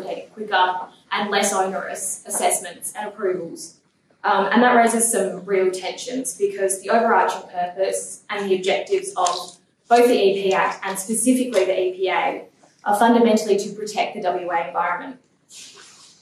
quicker and less onerous assessments and approvals. And that raises some real tensions because the overarching purpose and the objectives of both the EP Act and specifically the EPA are fundamentally to protect the WA environment.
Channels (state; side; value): identical; both; correlation 1.00